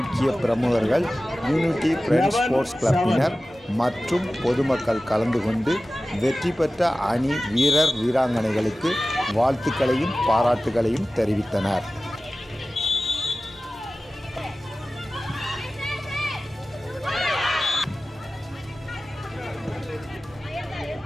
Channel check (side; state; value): both; normal; correlation 0.96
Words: பிரமுகர்கள், யூனிட்டி ஃப்ரெண்ட்ஸ் ஸ்போர்ட்ஸ் கிளப்பினர் மற்றும் பொதுமக்கள் கலந்து கொண்டு வெற்றி பெற்ற அணி வீரர் வீராங்கனைகளுக்கு வாழ்த்துக்களையும் பாராட்டுகளையும் தெரிவித்தனர்.